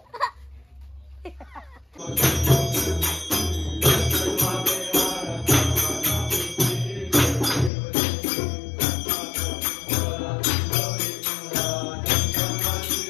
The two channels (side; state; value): right; drops out; at 7.7 s